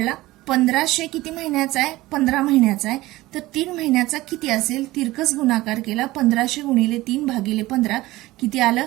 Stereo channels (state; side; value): quieter; left; 18.3 dB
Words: 1,500 किती महिन्याचा आहे? 15 महिन्याचा आहे. तर 3 महिन्याचा किती असेल? तिरकस गुणाकार केला. 1,500 गुणिले 3 भागिले 15 किती आलं?